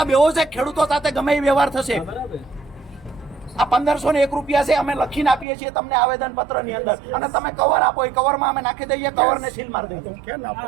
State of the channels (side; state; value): left; drops out; at 5.5 s